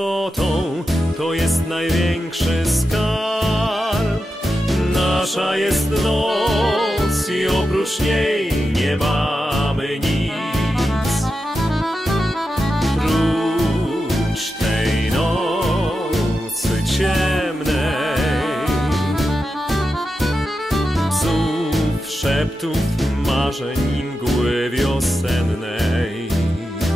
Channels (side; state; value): both; normal; correlation 0.90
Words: to jest największy skarb. Nasza jest noc i oprócz niej nie mamy nic. Prócz tej nocy ciemnej, psów, szeptów, marzeń i mgły wiosennej.